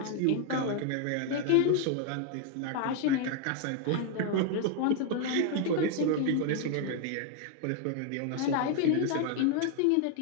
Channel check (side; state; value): both; different; correlation 0.00